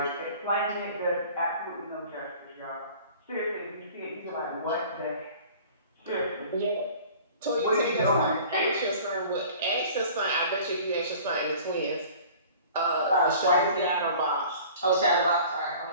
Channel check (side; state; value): both; inverted; correlation -0.46